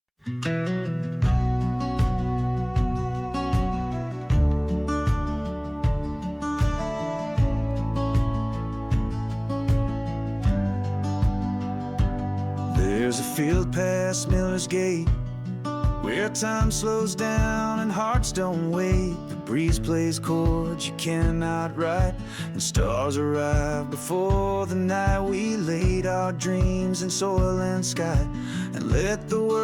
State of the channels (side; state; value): both; identical; correlation 1.00